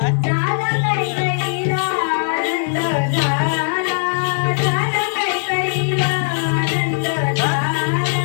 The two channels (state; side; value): silent; right; digital silence